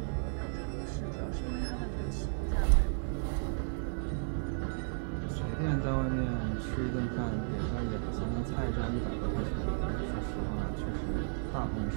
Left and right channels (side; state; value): left; silent; digital silence